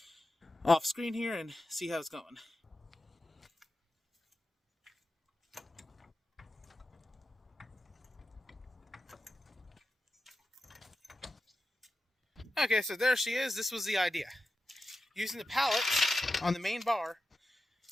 off screen here and see how it's going. Okay, so there she is. This was the idea. Using the pallet on the main bar,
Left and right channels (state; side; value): normal; both; correlation 0.91